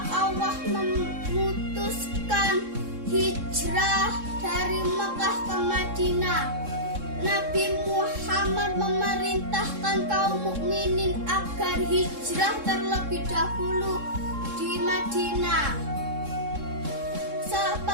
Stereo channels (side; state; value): left; late; 3.7 ms